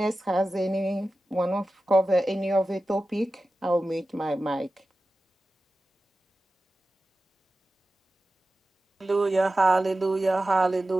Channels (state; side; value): normal; both; correlation 0.94